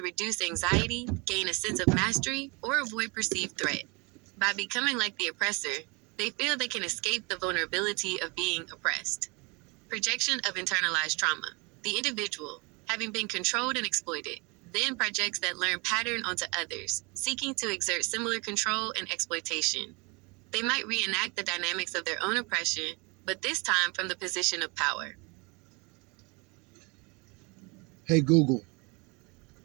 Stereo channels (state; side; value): quieter; left; 29.1 dB